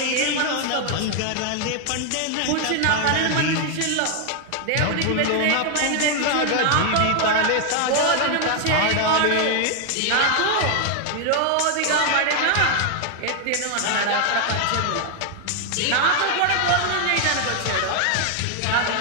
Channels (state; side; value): different; both; correlation 0.00